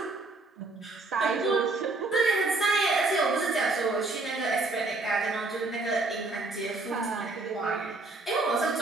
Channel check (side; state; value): left; quieter; 3.3 dB